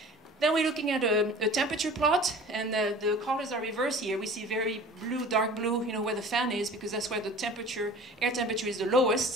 Then we're looking at a temperature plot, and the colors are reversed here. We see very blue, dark blue, where the fan is, because that's where the air temperature is the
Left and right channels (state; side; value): normal; both; correlation 0.43